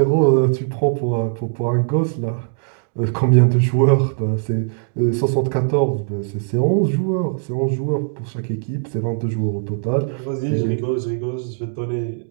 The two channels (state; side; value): silent; left; digital silence